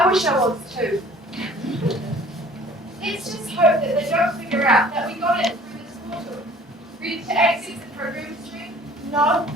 wish I was too. Let's just hope that they don't figure out that we got it through this portal. Ready to access the program stream? No,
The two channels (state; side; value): normal; both; correlation 0.51